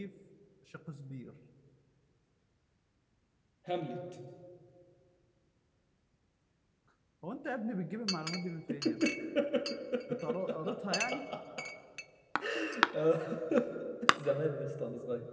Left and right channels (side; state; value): both; identical; correlation 1.00